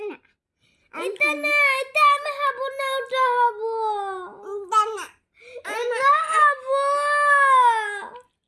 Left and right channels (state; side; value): identical; both; correlation 1.00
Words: এটা না এটা আমি হবো না ওটা হবো এটা না এটা হবো